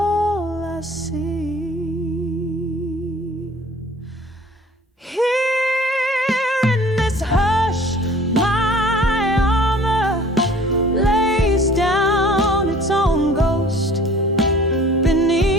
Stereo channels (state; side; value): normal; both; correlation 0.50